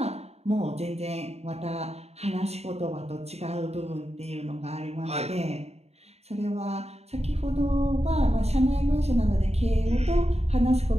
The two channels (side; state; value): left; late; 0.31 ms